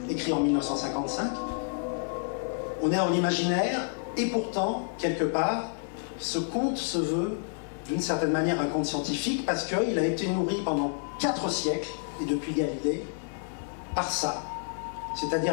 écrit en 1955, on est en imaginaire et pourtant, quelque part, ce conte se veut d'une certaine manière un conte scientifique parce qu'il a été nourri pendant 4 siècles, et depuis Galilée, par ça.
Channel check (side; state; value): right; silent; 58 dB below the other